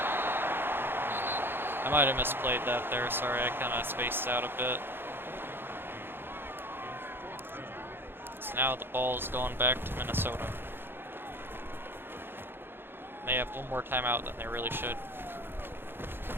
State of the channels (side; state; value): left; late; 0.10 ms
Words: I might have misplayed that there, sorry, I kind of spaced out a bit. So now the ball's going back to Minnesota. They have one more timeout than they really should.